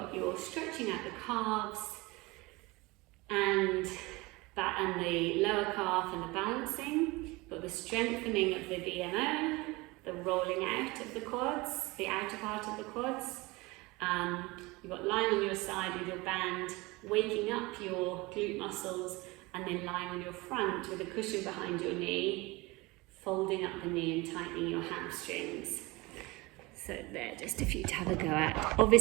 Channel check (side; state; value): left; quieter; 23.1 dB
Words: your stretching out the calves and the lower calf and the balancing, but the strengthening of the VMO, the rolling out of the quads, the outer part of the quads. You've got lying on your side with your band, waking up your glute muscles, and then lying on your front with a cushion behind your knee, folding up the knee and tightening your hamstrings. So there, just a few to have a go at.